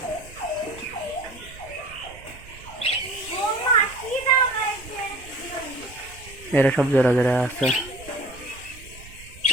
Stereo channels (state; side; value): noise; right; rumble, 19 dB below the sound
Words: এরা সব জোড়া জোড়া আছে।